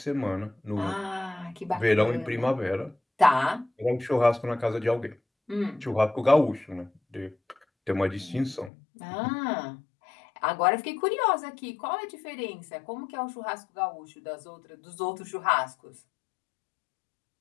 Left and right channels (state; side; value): drops out; right; at 8.7 s